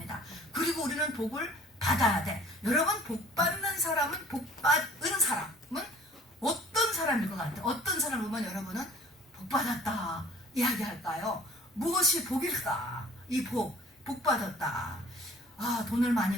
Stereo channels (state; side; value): normal; both; correlation 0.51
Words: 그리고 우리는 복을 받아야 돼. 여러분, 복받는 사람은, 복받은 사람은 어떤 사람일 것 같아요? 어떤 사람을 보면 여러분은 복받았다 이야기할까요? 무엇이 복일까? 이 복받았다. 아, 돈을